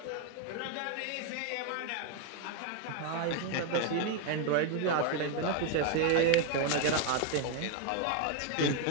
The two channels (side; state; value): both; different; correlation 0.01